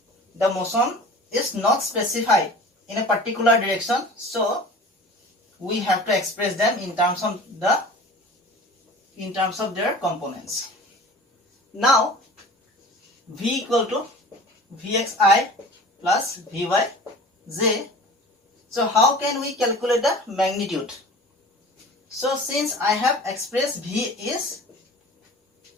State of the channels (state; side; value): normal; both; correlation 0.40